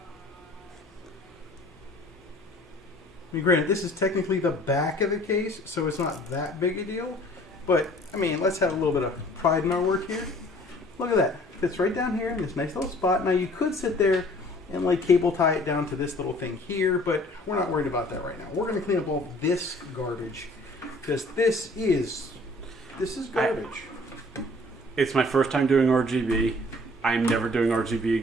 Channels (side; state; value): both; normal; correlation 0.53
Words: I mean, granted, this is technically the back of the case, so it's not that big a deal. But, I mean, let's have a little bit of pride in our work here. Look at that. Fits right down here in this nice little spot. Now, you could sit there and, like, cable tie it down to this little thing here, but we're not worried about that right now. We're going to clean up all this garbage, because this is garbage. It's my first time doing RGB. I'm never doing RGB